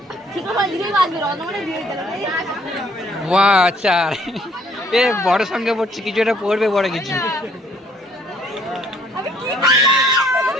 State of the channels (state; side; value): normal; both; correlation 0.61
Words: ঠিক আছে, জিরোই বাদবে, অতমানে জিরোই দিলাম। বাহ, 4। এ বড় সঙ্গে পড়ছে, কিছু একটা পড়বে বড় কিছু।